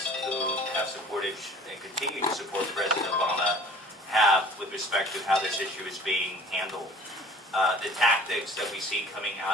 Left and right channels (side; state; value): both; normal; correlation 0.47